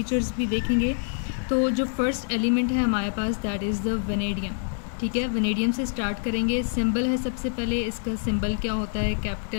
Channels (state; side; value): silent; right; digital silence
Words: भी देखेंगे। तो जो फर्स्ट एलिमेंट है हमारे पास दैट इज़ द वेनेडियम। ठीक है, वेनेडियम से स्टार्ट करेंगे। सिंबल है सबसे पहले, इसका सिंबल क्या होता है,